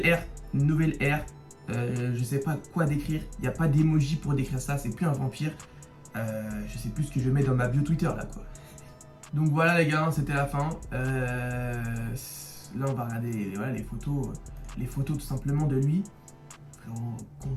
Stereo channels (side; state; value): both; identical; correlation 1.00